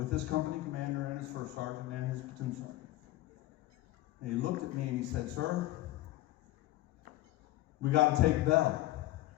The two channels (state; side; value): quieter; right; 16.6 dB